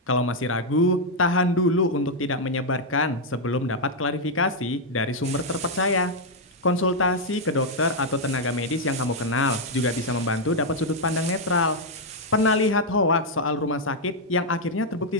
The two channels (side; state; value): both; normal; correlation -0.01